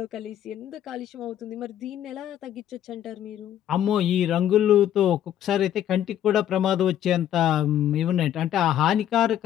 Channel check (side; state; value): right; quieter; 11.0 dB